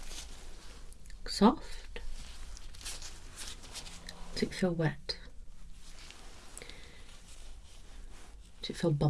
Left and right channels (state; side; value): identical; both; correlation 1.00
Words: Soft? Does it feel wet? Does it feel